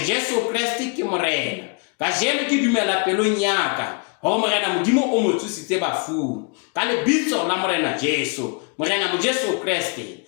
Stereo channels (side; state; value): right; quieter; 34.2 dB